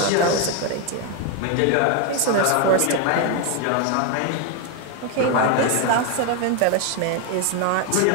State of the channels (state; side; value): different; both; correlation 0.01